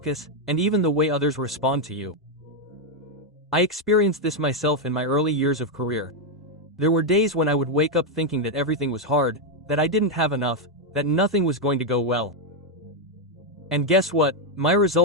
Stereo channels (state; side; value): normal; both; correlation 0.02